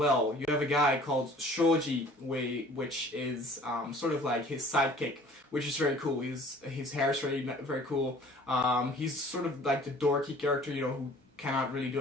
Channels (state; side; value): normal; both; correlation 0.50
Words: You have a guy called Shoji, which is sort of like his sidekick, which is very cool. His hair is very cool. He's sort of like the dorky character, who cannot really do